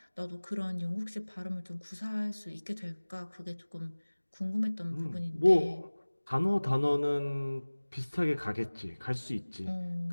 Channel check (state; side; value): inverted; both; correlation -1.00